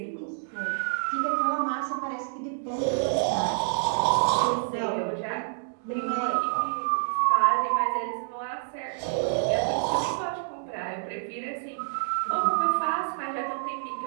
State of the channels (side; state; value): left; silent; digital silence